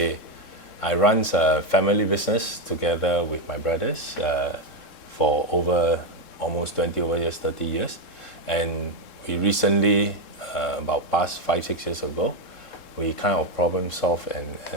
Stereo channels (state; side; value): late; right; 3.7 ms